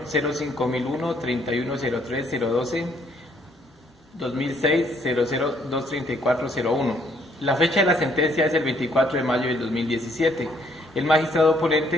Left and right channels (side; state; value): both; normal; correlation 0.66